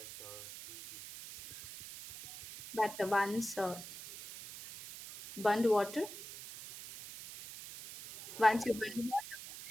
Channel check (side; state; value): right; noise; hiss, 12 dB below the sound